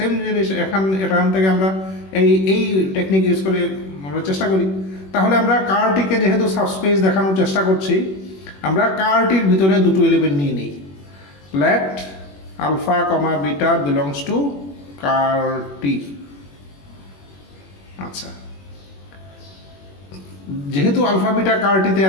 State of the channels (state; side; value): late; right; 21 ms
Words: জিনিস এখান থেকে আমরা এই টেকনিক ইউজ করে আমরা চেষ্টা করি। তাহলে আমরা কারটিকে যেহেতু সাবস্পেস দেখানোর চেষ্টা করছি, আমরা কারটির ভিতরে দুটো এলিমেন্ট নিয়ে নিই। Let alpha comma beta belongs to ker T. আচ্ছা, যেহেতু আলফা বিটা কারটিতে